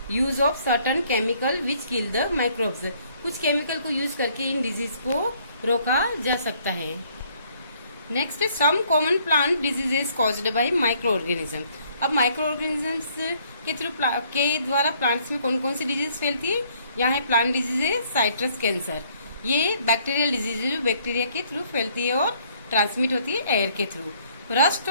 use of certain chemical which kill the microbes, कुछ केमिकल को यूज करके इन डिजीज को रोका जा सकता है। नेक्स्ट है some common plant diseases caused by microorganism. अब माइक्रो ऑर्गेनिजम्स के द्वारा प्लांट्स में कौन कौन सी डिजीज फैलती है, यहाँ है प्लांट डिजीज है साइट्रस कैंसर, ये बैक्टीरियल डिजीज है जो बैक्टीरिया के थ्रू फैलती है और ट्रांसमिट होती है एयर के through. Rust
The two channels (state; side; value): inverted; both; correlation -0.64